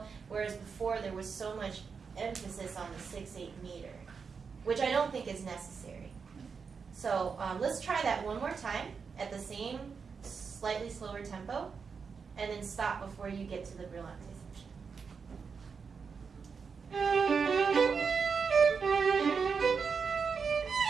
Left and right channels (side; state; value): left; quieter; 5.6 dB